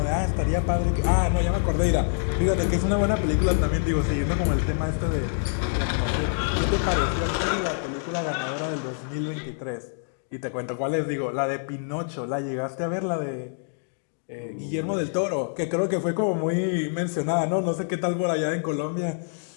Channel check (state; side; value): silent; right; digital silence